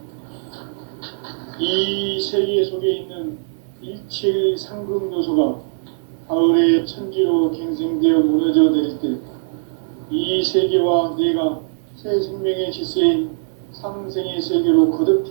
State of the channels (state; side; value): silent; left; 65 dB below the other